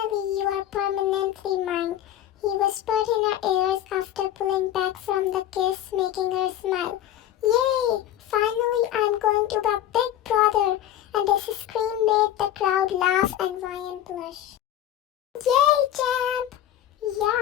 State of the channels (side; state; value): right; quieter; 12.0 dB